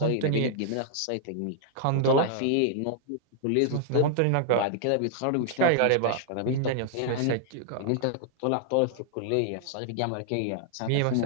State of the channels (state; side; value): different; both; correlation -0.01